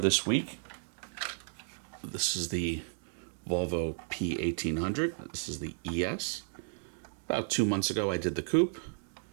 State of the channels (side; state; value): left; silent; digital silence